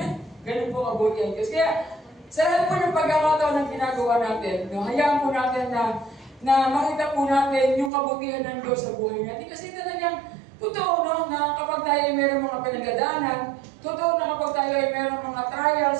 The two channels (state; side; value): drops out; left; at 7.9 s